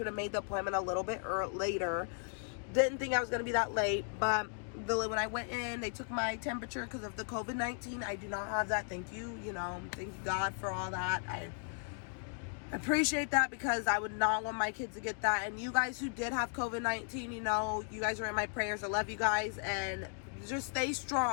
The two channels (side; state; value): right; silent; 54 dB below the other